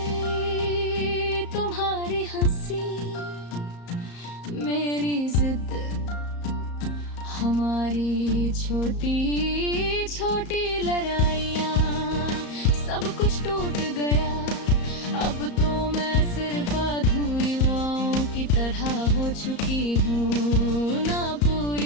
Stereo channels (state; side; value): late; right; 34 ms